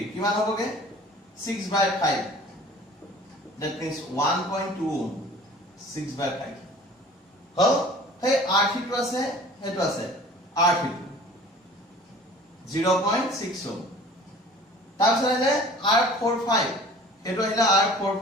কিমান হবগে 6 by 5 that means 1.2 ohm 6 by 5 হল হে r3 টো আছে হেটো আছে r3 0.6 ohm তাৰপিছত আহিলে r45 হেটো আহিলে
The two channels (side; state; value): both; normal; correlation 0.46